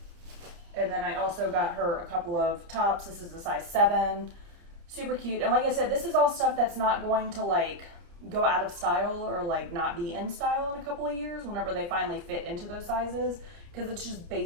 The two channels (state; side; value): late; left; 30 ms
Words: And then I also got her a couple of tops. This is a size 7. Super cute. And like I said, this is all stuff that's not going to like go out of style or like not be in style in a couple of years whenever they finally fit into those sizes, because it's just